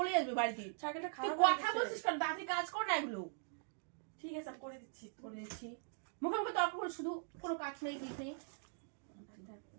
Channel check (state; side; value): silent; left; digital silence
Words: আসবে বাড়িতে। সাইকেলটা তুই খারাপ কথা বলছিস কেন? তাড়াতাড়ি কাজ কর না এগুলো। ঠিক আছে, আমি করে দিচ্ছি। মুখে মুখে তর্ক করে শুধু, কোনো কাজ নেই কিছু নেই।